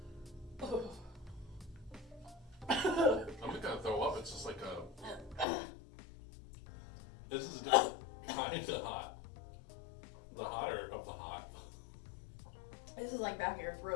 I have. Oh. I'm not gonna throw up. It's just like a. This is a different kind of hot. The hotter of the hot. This is like back of your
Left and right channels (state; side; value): drops out; right; at 5.5 s